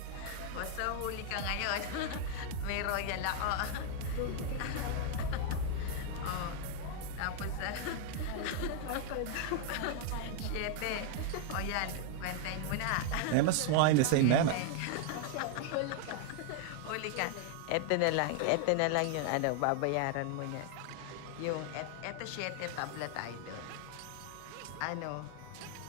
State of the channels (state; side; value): different; both; correlation 0.00